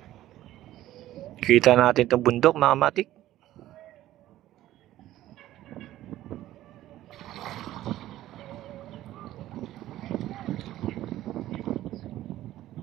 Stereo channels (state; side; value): quieter; left; 14.2 dB